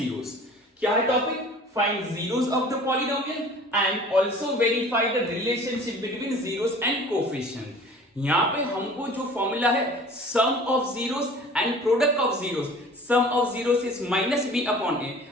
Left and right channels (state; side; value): normal; both; correlation 0.45